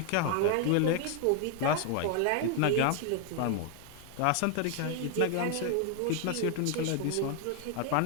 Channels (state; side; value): different; both; correlation 0.00